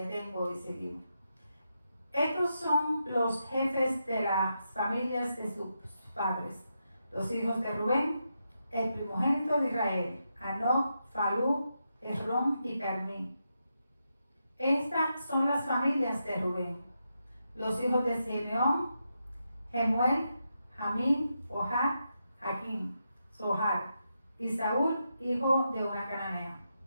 y seguimos. Estos son los jefes de las familias de sus padres, los hijos de Rubén, el primogénito de Israel, Hanoc, Falú, Hezrón y Carmí. Estas son las familias de Rubén. Los hijos de Simeón, Jemuel, Jamín, Ohad, Jaquín, Zohar y Saúl, hijo de una cananea.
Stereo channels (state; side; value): inverted; both; correlation -0.85